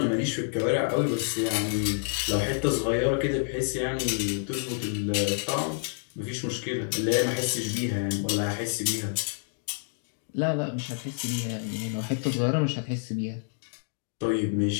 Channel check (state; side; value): silent; right; digital silence